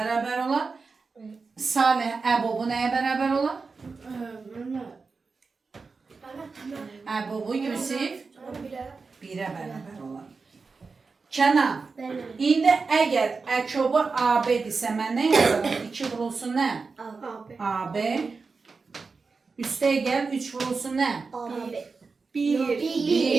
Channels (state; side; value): quieter; left; 4.5 dB